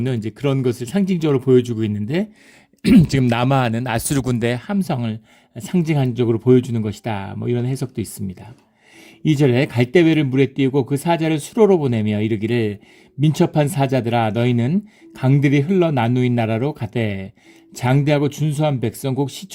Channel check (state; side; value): identical; both; correlation 1.00